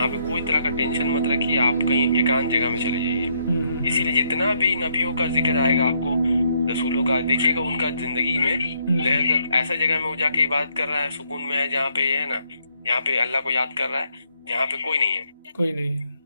पे कोई तरह का टेंशन मत रखिए, आप कहीं एकांत जगह में चले जाइए। इसीलिए जितना भी नबियों का जिक्र आएगा आपको, रसूलों का, देखिएगा उनका जिंदगी में ऐसा जगह में वो जाके इबादत कर रहा है, सुकून में है, जहाँ पे है ना, यहाँ पे अल्लाह को याद कर रहा है, जहाँ पे कोई नहीं है।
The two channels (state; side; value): inverted; both; correlation -0.73